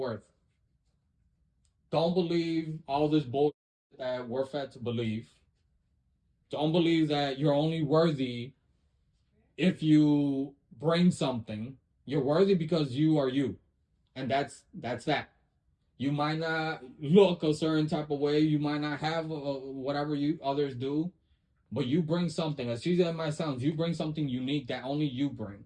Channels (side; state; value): both; identical; correlation 1.00